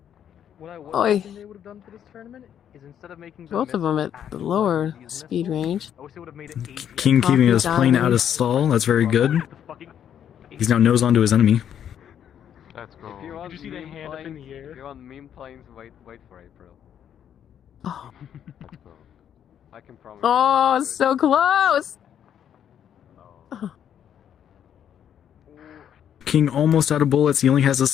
out. Oi. Both of them at the lower speed range. King keeping his Coffee plane diving. out of stall. That's very good. He's now nose on to his enemy. Let's go. Did you see the hand up in the air? If you're on meme planes, wait for it, bro. Oh, Let's go. I can promise. oh, it's so close. King almost out of bullets. He only has a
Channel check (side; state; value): right; quieter; 9.4 dB